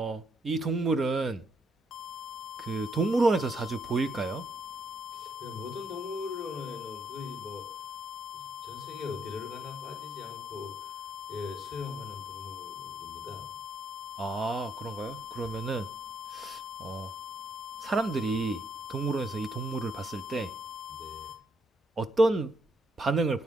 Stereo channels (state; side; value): normal; both; correlation 0.74